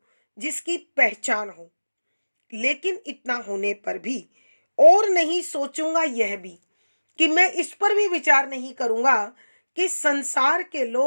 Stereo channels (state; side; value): inverted; both; correlation -1.00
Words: जिसकी पहचान हो। लेकिन इतना होने पर भी और नहीं सोचूंगा यह भी, कि मैं इस पर भी विचार नहीं करूंगा कि संसार के